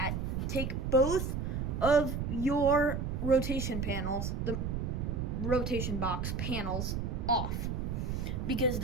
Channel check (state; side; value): noise; right; rumble, 2 dB below the sound